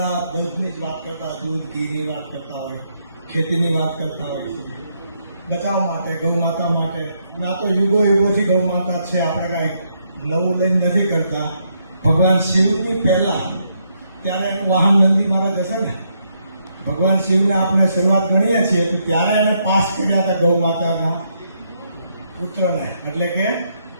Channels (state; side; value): inverted; both; correlation -0.76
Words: દૂધની જ વાત કરતા હોય, દૂધ ઘીની વાત કરતા હોય, ખેતીની વાત કરતા હોય છે, બચાવ માટે, ગૌ માતા માટે. ના તો યુગોથી ગૌ માતા છે, આપણે કાંઈ નવું લઈને નથી કરતા. ભગવાન શિવની પહેલા ત્યારે એનું વાહન નંદી મહારાજ હશે ને, ભગવાન શિવને આપણે શરૂઆત ગણીએ છીએ તો ત્યારે એને પાસ કર્યા હતા ગૌ માતાના પુત્રને, એટલે કે